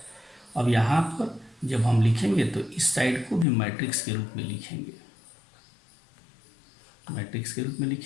अब यहाँ पर जब हम लिखेंगे तो इस साइड को भी मैट्रिक्स के रूप में लिखेंगे, मैट्रिक्स के रूप में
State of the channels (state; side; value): drops out; right; at 3.5 s